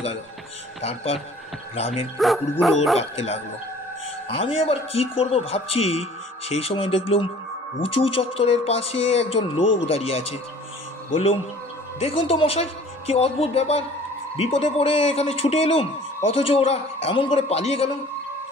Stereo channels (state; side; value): normal; both; correlation 0.50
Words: গেল। তারপর গ্রামের কুকুরগুলো ডাকতে লাগলো। আমি আবার কি করব ভাবছি, সেই সময় দেখলুম উঁচু চত্বরের পাশে একজন লোক দাঁড়িয়ে আছে। বললুম, দেখুন তো মশাই, কি অদ্ভুত ব্যাপার! বিপদে পড়ে এখানে ছুটে এলুম, অথচ ওরা এমন করে পালিয়ে গেল।